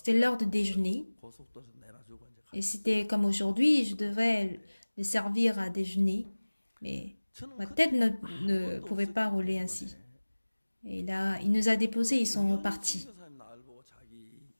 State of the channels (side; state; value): both; inverted; correlation -1.00